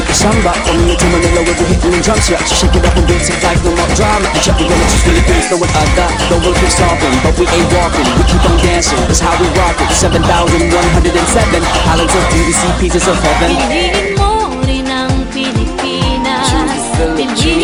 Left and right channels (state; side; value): identical; both; correlation 1.00